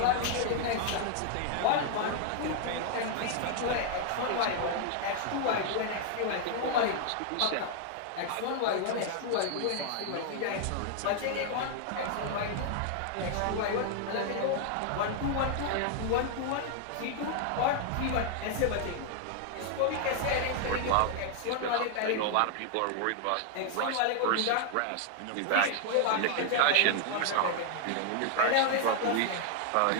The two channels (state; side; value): different; both; correlation 0.00